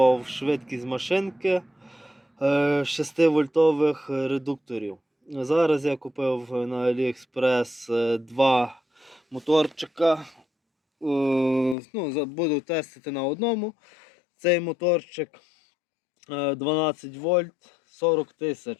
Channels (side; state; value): right; drops out; at 11.8 s